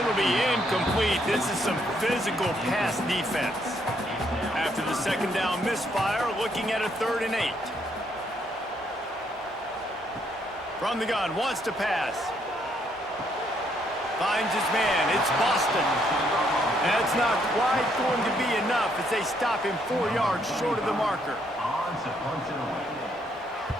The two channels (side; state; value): both; normal; correlation 0.72